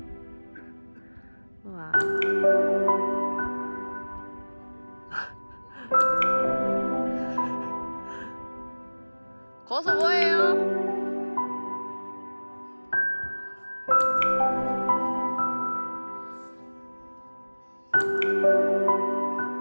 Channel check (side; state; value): both; inverted; correlation -1.00